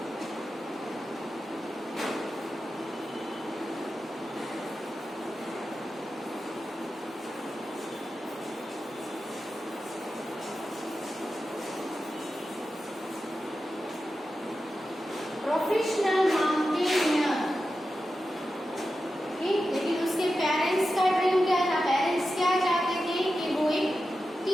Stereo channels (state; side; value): normal; both; correlation 0.91